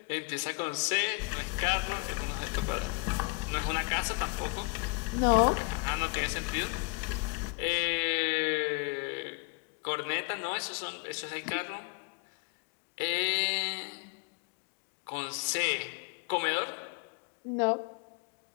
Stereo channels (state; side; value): quieter; right; 31.5 dB